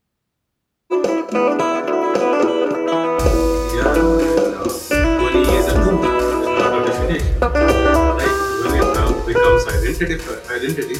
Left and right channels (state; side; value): identical; both; correlation 1.00